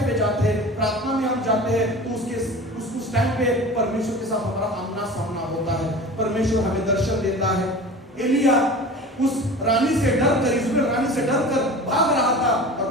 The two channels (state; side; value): normal; both; correlation 0.37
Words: पे जाते हैं, प्रार्थना में हम जाते हैं, तो उस टाइम पे परमेश्वर के साथ हमारा आमना सामना होता है। परमेश्वर हमें दर्शन देता है। एलिया उस रानी से डरकर, इज़राइल रानी से डरकर भाग रहा था, और